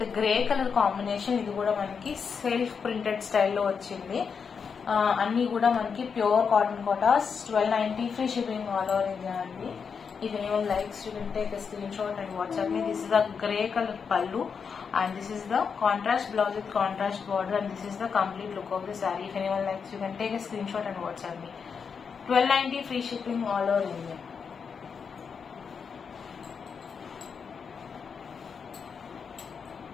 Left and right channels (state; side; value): quieter; right; 6.1 dB